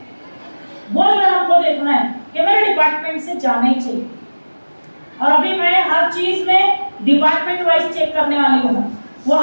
वो जो है हमको देखना है कि मेरे डिपार्टमेंट से जाना ही चाहिए। और अभी मैं हर चीज में डिपार्टमेंट वाइज चेक करने वाली हूँ, वो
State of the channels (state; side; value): inverted; both; correlation -1.00